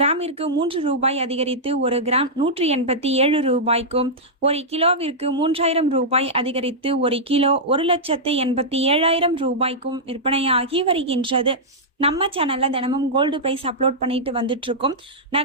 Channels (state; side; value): normal; both; correlation -0.10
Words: 3 ரூபாய் அதிகரித்து ஒரு கிராம் 187 ரூபாய்க்கும், ஒரு கிலோவிற்கு 3000 ரூபாய் அதிகரித்து ஒரு கிலோ 1,87,000 ரூபாய்க்கும் விற்பனையாகி வருகின்றது. நம்ம சேனலில் தினமும் கோல்டு ப்ரைஸ் அப்லோட் பண்ணிட்டு வந்துட்டு இருக்கோம்.